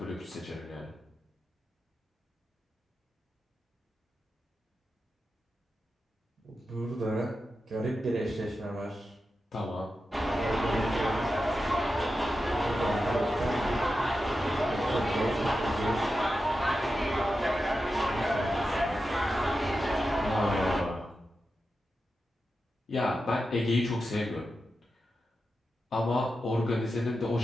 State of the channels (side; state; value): both; normal; correlation 0.90